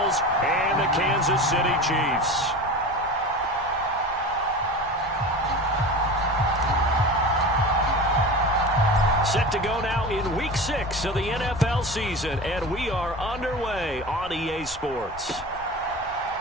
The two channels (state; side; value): noise; left; rumble, 20 dB below the sound